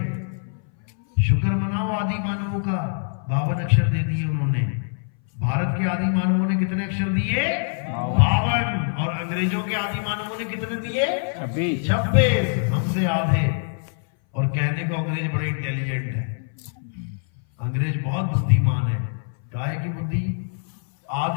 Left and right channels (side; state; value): right; silent; 60 dB below the other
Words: शुक्र मनाओ आदि मानवों का, 52 अक्षर दे दिए उन्होंने। भारत के आदि मानवों ने कितने अक्षर दिए? 52। और अंग्रेजों के आदि मानवों ने कितने दिए? 26। हमसे आधे। और कहने को अंग्रेज बड़े इंटेलिजेंट है, अंग्रेज बहुत बुद्धिमान है। काहे की बुद्धि?